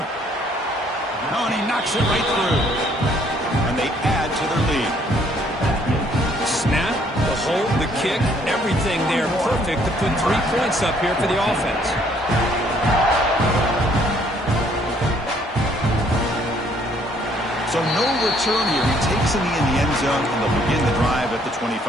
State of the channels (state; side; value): normal; both; correlation 0.64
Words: Oh, and he knocks it right through. And they add to their lead. Snap, the hold, the kick, everything there perfect to put 3 points up here for the offense. So no return here. He takes him in the end zone, and they'll begin the drive at the